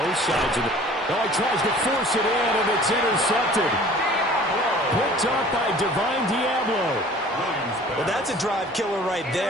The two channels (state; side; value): normal; both; correlation 0.48